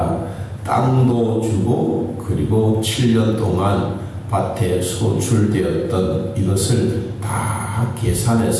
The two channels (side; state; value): both; identical; correlation 1.00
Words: 땅도 주고 그리고 7년 동안 밭에 소출되었던 이것을 다